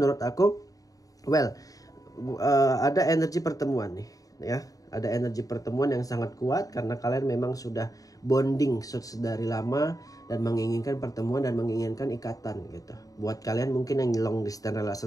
aku ada energi pertemuan nih ya. Ada energi pertemuan yang sangat kuat karena kalian memang sudah bonding dari lama dan menginginkan pertemuan dan menginginkan ikatan gitu. Buat kalian mungkin yang long distance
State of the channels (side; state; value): right; late; 0.17 ms